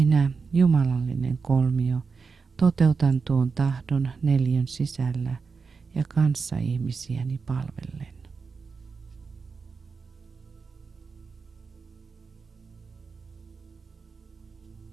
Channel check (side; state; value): left; quieter; 5.0 dB